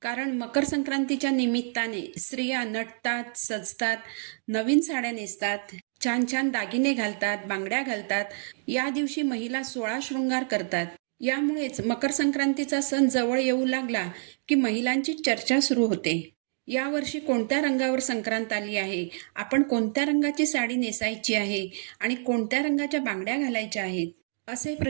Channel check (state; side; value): silent; left; digital silence